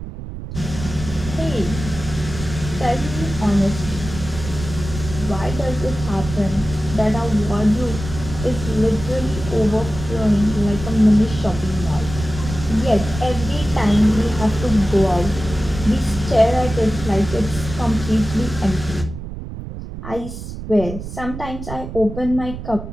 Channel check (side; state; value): right; noise; rumble, 9 dB below the sound